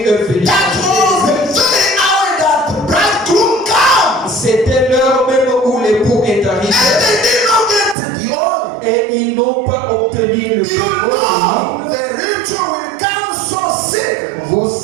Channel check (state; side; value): drops out; left; at 8.0 s